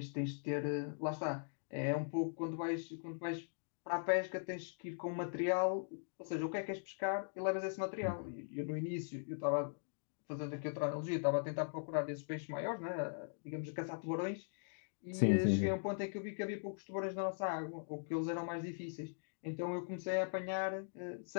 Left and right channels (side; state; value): right; silent; digital silence